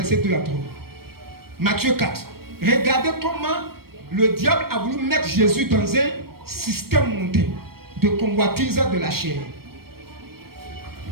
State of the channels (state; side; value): late; left; 0.94 ms